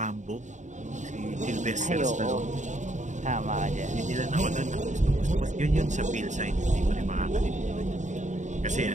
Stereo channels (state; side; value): late; left; 0.35 ms